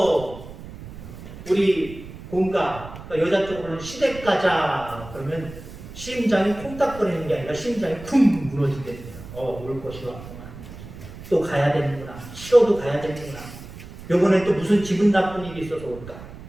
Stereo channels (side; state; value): right; noise; rumble, 14 dB below the sound